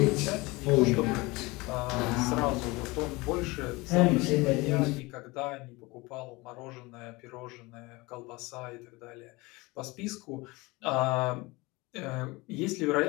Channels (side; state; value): right; quieter; 23.4 dB